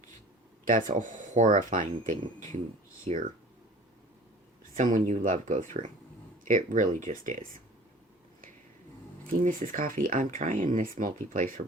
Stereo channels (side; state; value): both; normal; correlation 0.45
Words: That's a horrifying thing to hear someone you love go through. It really just is. See, Mrs. Coffee, I'm trying this multi-placer